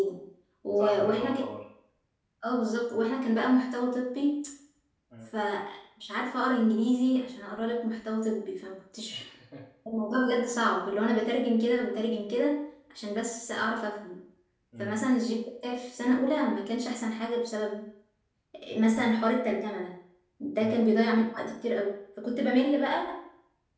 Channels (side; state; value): both; identical; correlation 1.00